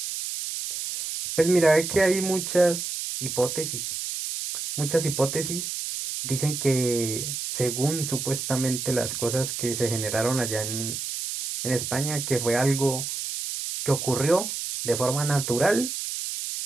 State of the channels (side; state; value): right; noise; hiss, 4 dB below the sound